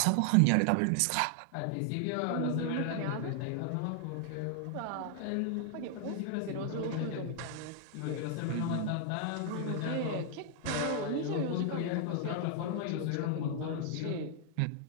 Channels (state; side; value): different; both; correlation 0.00